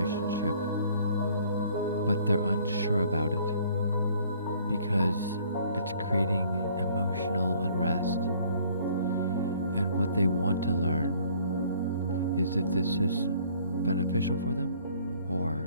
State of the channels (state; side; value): inverted; both; correlation -0.58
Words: but they're unsure about it because it's creating emotional unrest. And what they want to learn is if this is beneficial for them